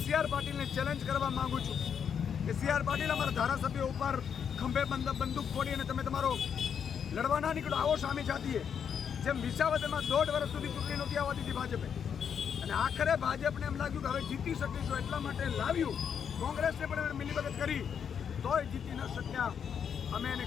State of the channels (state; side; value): quieter; right; 7.6 dB